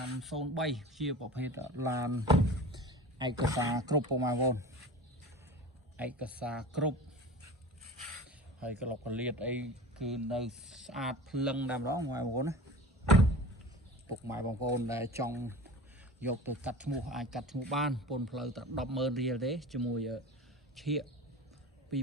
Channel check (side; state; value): both; normal; correlation 0.35